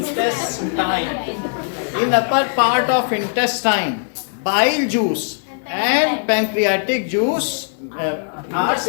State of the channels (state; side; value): silent; right; digital silence